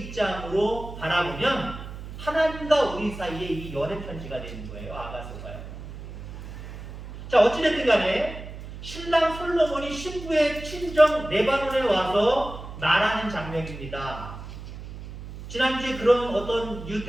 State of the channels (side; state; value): right; noise; hum, 11 dB below the sound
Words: 바라보면 하나님과 우리 사이에 이 연애 편지가 되는 거예요. 아가서가요. 자, 어찌됐든 간에 신랑 솔로몬이 신부의 친정 레바논에 와서 말하는 장면입니다. 지난주에 그런 어떤